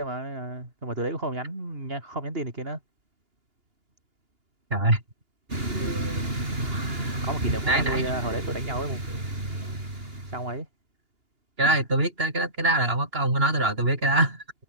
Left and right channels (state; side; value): late; left; 2.8 ms